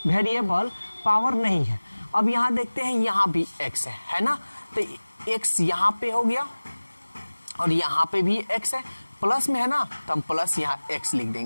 वेरिएबल पावर नहीं है। अब यहाँ देखते हैं यहाँ भी x है ना, तो x यहाँ पे हो गया और यहाँ पे भी x है, प्लस में है ना, तो हम प्लस यहाँ x लिख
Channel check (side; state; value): both; inverted; correlation -1.00